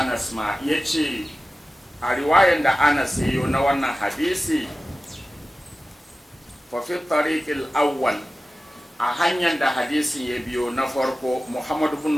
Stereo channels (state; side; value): normal; both; correlation 0.95